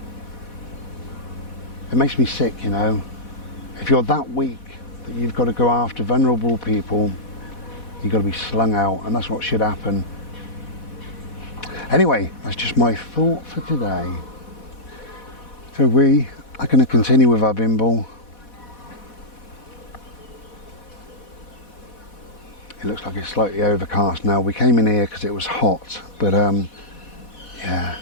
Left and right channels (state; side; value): late; right; 4.1 ms